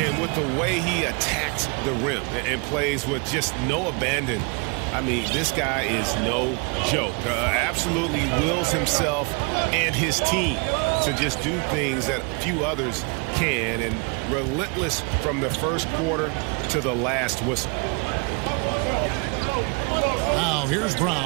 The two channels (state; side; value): quieter; left; 32.8 dB